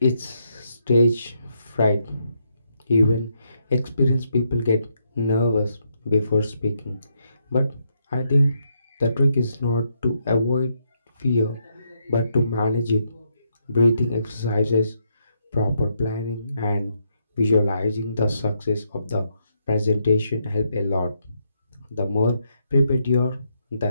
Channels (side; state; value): both; inverted; correlation -0.77